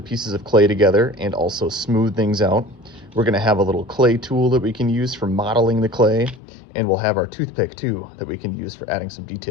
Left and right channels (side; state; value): right; drops out; at 6.4 s